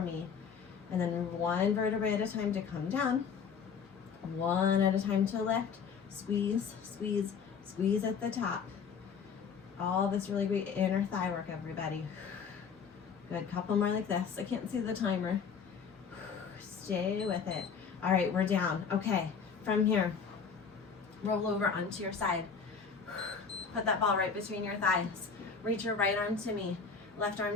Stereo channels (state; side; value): quieter; right; 6.1 dB